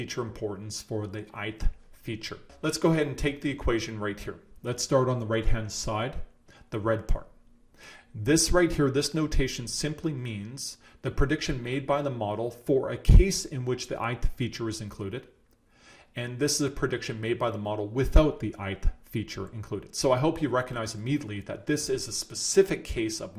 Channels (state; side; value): identical; both; correlation 1.00